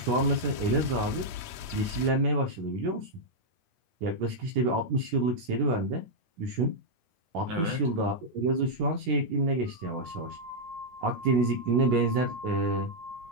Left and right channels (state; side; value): late; left; 8.6 ms